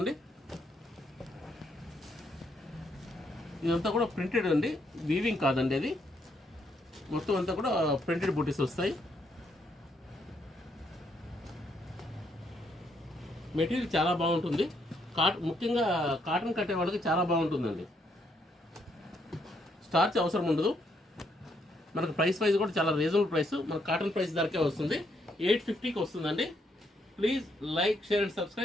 ఇదంతా కూడా ప్రింటెడ్ అండి, వీవింగ్ కాదండి. అది మొత్తం అంతా కూడా ప్రింటెడ్ బూటీస్ వస్తాయి. మెటీరియల్ చాలా బాగుంటుంది. ముఖ్యంగా కాటన్ కట్టే వాళ్ళకి చాలా బాగుంటుందండి. స్టార్చ్ అవసరం ఉండదు. మనకు ప్రైస్ వైజ్ కూడా చాలా రీజనబుల్ ప్రైస్. మనకు కాటన్ ప్రైస్ ధరకే వస్తుంది. 850కి వస్తుందండి. Please like, share and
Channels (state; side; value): normal; both; correlation 0.74